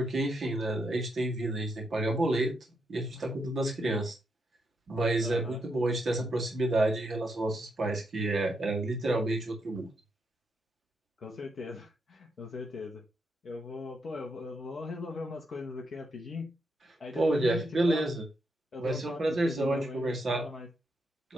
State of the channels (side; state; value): both; normal; correlation 0.80